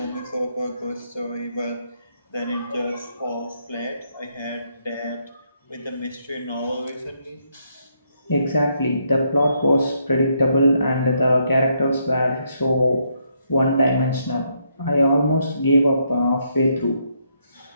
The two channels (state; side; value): inverted; both; correlation -0.75